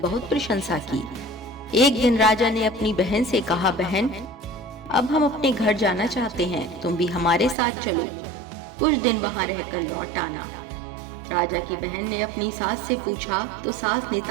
प्रशंसा की। एक दिन राजा ने अपनी बहन से कहा, बहन, अब हम अपने घर जाना चाहते हैं, तुम भी हमारे साथ चलो, कुछ दिन वहां रहकर लौट आना। राजा की बहन ने अपनी सास से पूछा तो सास ने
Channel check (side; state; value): left; drops out; at 7.6 s